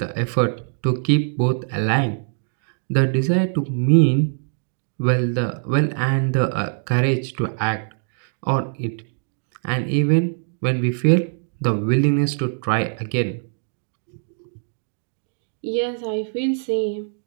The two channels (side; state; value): left; silent; 59 dB below the other